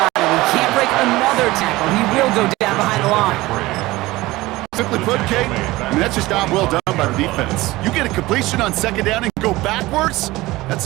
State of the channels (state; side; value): quieter; left; 19.2 dB